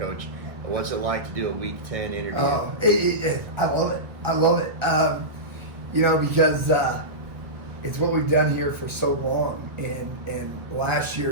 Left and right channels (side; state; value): left; late; 1.4 ms